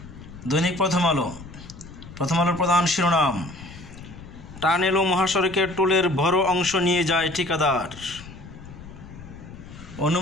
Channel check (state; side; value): noise; left; rumble, 16 dB below the sound